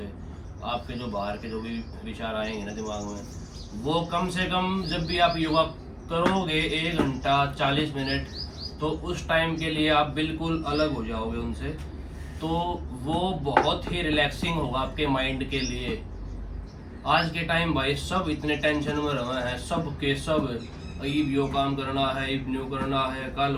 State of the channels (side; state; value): both; identical; correlation 1.00